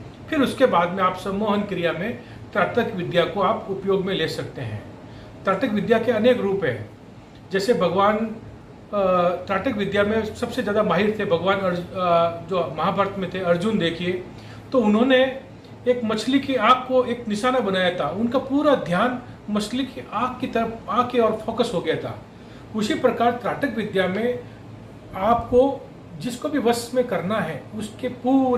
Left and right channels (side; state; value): both; identical; correlation 1.00